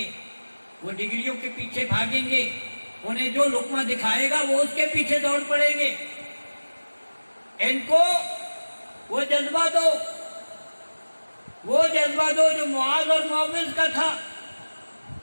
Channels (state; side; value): inverted; both; correlation -1.00